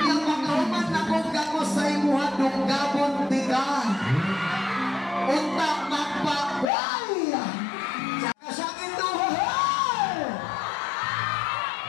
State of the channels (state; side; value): drops out; right; at 6.7 s